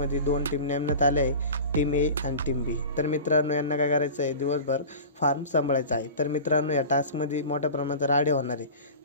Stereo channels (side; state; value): both; inverted; correlation -0.35